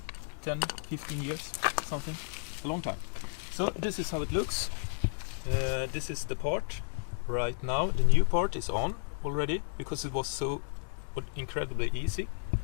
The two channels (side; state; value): right; silent; digital silence